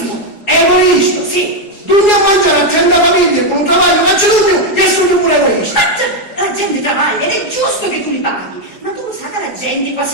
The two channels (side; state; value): right; late; 4.7 ms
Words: Egoista? Sì. Dugni a mangiare a 30 famiglie con un travaglio faccio tu e sono pure egoista. Ma la gente travaglia ed è giusto che tu li paghi. Ma tu lo sai che la gente